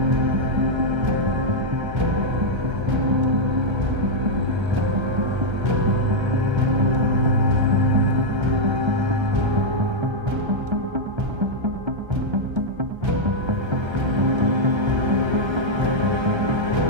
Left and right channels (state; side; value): late; left; 1.3 ms